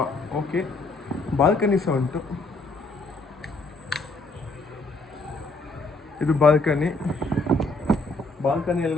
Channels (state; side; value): quieter; right; 3.1 dB